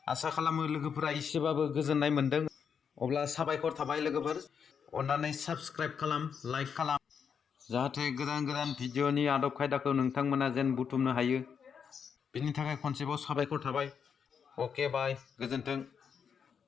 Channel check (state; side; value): quieter; right; 6.9 dB